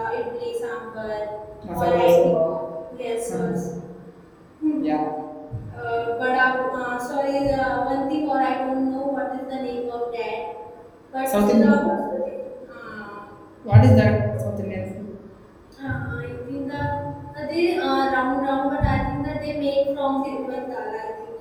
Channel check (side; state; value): both; identical; correlation 1.00